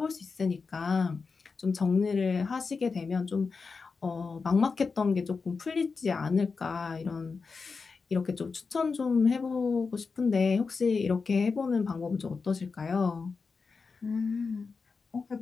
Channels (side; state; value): right; quieter; 4.8 dB